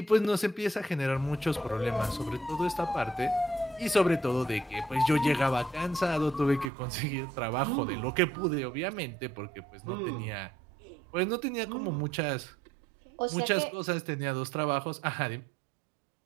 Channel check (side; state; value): left; drops out; at 6.7 s